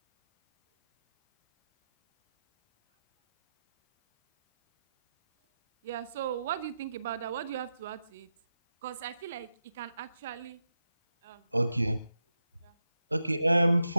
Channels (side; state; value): both; inverted; correlation -0.90